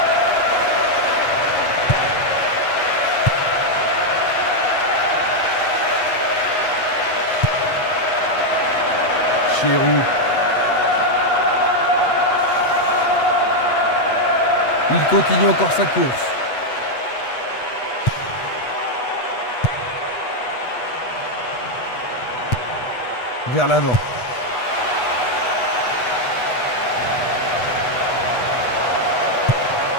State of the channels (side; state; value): right; late; 8.2 ms